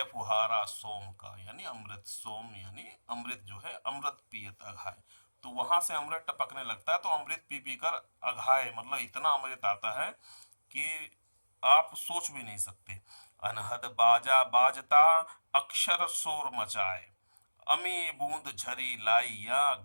फुहारा सोम का यानी अमृत, सोम यानी अमृत जो है, अमृत पियत अघाए, तो वहां से अमृत टपकने लगता है। तो अमृत पी पी कर अघाए मतलब इतना अमृत आता है कि आप सोच भी नहीं सकते। अनहद बाजा बाजता अक्षर शोर मचाए, अमी बूंद झरी लाई या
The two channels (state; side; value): inverted; both; correlation -1.00